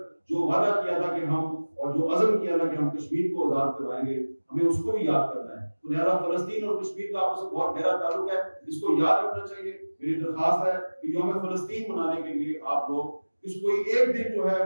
جو وعدہ کیا تھا کہ ہم، اور جو عزم کیا تھا کہ ہم کشمیر کو آزاد کروائیں گے، ہمیں اس کو بھی یاد کرنا ہے. تو لہٰذا فلسطین اور کشمیر کا آپس میں بہت گہرا تعلق ہے، اس کو یاد رکھنا چاہیے. میری درخواست ہے کہ یوم فلسطین منانے کے لیے آپ لوگ اس کوئی ایک دن جو ہے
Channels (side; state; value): both; inverted; correlation -1.00